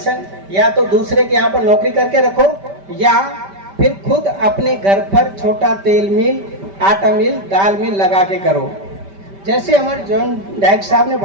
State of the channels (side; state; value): left; late; 5.1 ms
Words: या तो दूसरे के यहाँ पर नौकरी करके रखो, या फिर खुद अपने घर पर छोटा तेल मिल, आटा मिल, दाल मिल लगा के करो। जैसे हमारे जॉन डायरेक्टर साहब ने